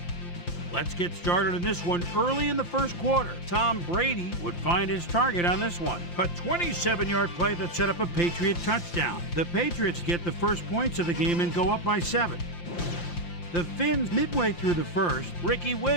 Let's get started in this one early in the first quarter. Tom Brady would find his target on this one. A 27-yard play that set up a Patriot touchdown. The Patriots get the first points of the game and go up by 7. The Finns, midway through the first, Ricky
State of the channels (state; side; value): late; right; 5.8 ms